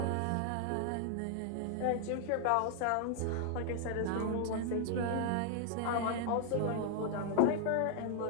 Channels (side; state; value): both; different; correlation 0.00